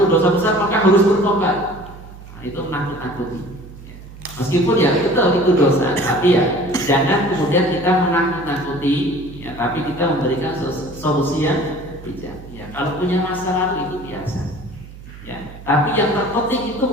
dosa besar maka harus bertobat. Itu menakut-nakuti, ya. Meskipun ya betul itu dosa, tapi ya jangan kemudian kita menakut-nakuti, ya, tapi kita memberikan solusi yang bijak. Ya, kalau punya masa lalu itu biasa, ya, tapi yang terpenting itu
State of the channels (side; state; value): right; noise; hum, 17 dB below the sound